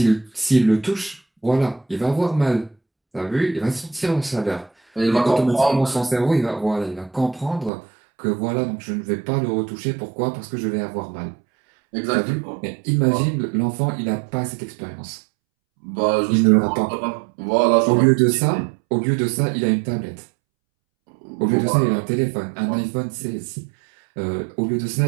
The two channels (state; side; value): drops out; left; at 7.7 s